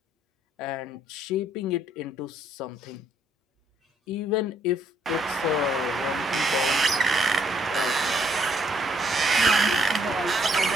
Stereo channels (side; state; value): both; normal; correlation 0.69